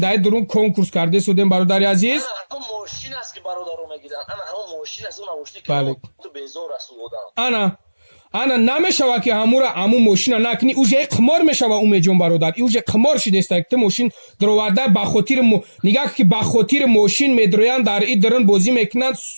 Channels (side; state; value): both; inverted; correlation -1.00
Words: درون کنکورس کرده سودین برادر عزیز انا همون ماشین است که برادرو میگیرن انا همون ماشین است اون ماشین که تو بیزار است بودم انا نمیشوه که همون ماشین نکنی اوجه قمار میشوه اومه جون برادر اوجه قمار شده است که ماشین دروارده با خاطر نگاه که با خاطر ماشین میدرویان در این درن بازی میکنن